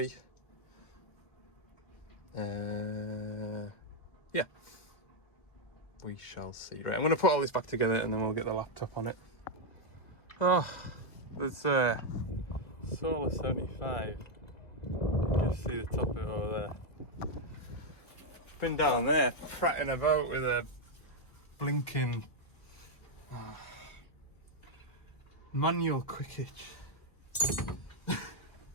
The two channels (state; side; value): late; right; 1.7 ms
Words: Yeah, we shall see. Right, I'm going to put all this back together and then we'll get the laptop on it. Oh, there's Solar 75. You can just see the top of it over there. Been down there prattling about with a blinking manual quick hitch.